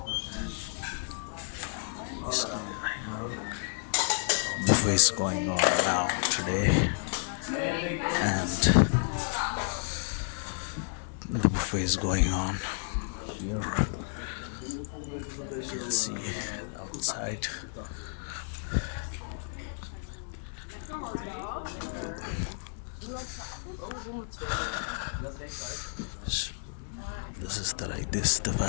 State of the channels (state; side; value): silent; right; digital silence